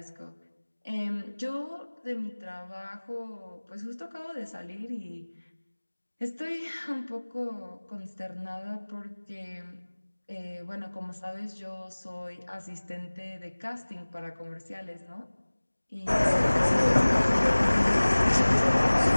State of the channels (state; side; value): inverted; both; correlation -1.00